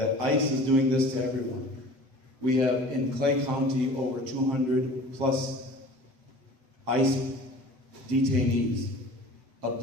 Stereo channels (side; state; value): left; late; 7.5 ms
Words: ICE is doing this to everyone. We have in Clay County over 200 plus ICE detainees,